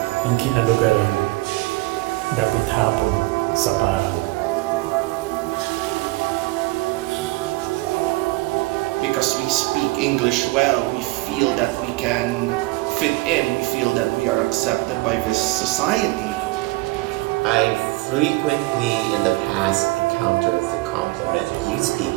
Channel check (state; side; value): quieter; left; 22.1 dB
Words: ang kinalugaran. Dapit hapon sa parang. Because we speak English well, we feel that we can fit in, we feel that we are accepted by this society. I frequently in the past encountered the compliment, you speak